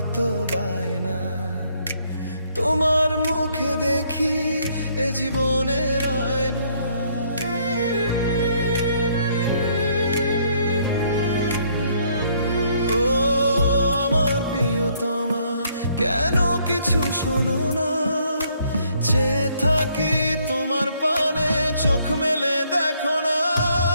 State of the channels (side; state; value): both; inverted; correlation -0.68